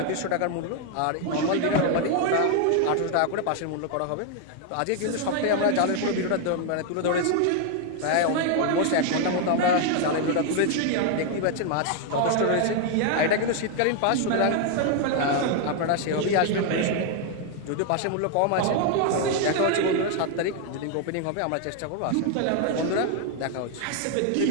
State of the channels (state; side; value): different; both; correlation 0.00